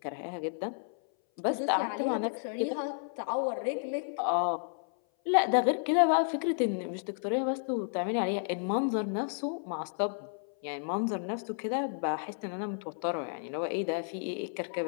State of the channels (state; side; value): silent; right; 57 dB below the other